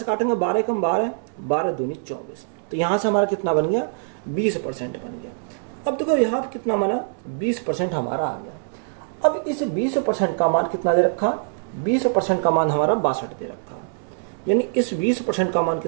काटेंगे 12 कम 12, 12 दूनी 24, तो यहाँ से हमारा कितना बन गया 20% बन गया। अब देखो यहाँ पर कितना माना 20% हमारा आ गया। अब इस 20% का मान कितना दे रखा, 20% का मान हमारा 62 दे रखा, यानी इस 20% का मान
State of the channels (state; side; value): silent; left; digital silence